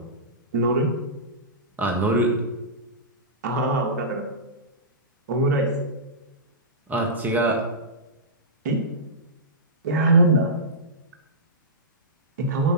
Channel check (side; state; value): both; normal; correlation -0.18